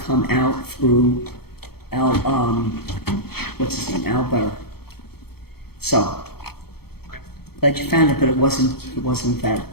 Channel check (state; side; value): late; right; 0.96 ms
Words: out through what's his name, Albert. So, glad you found it, but it wasn't